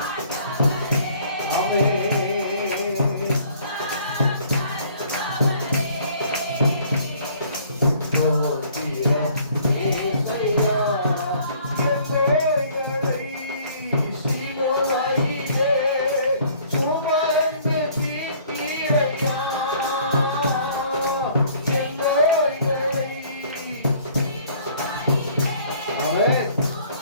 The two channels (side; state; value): both; inverted; correlation -0.57